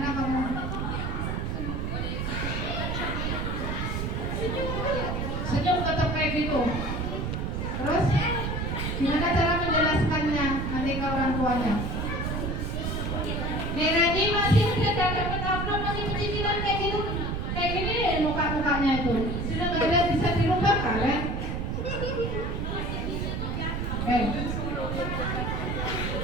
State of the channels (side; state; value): right; noise; rumble, 1 dB below the sound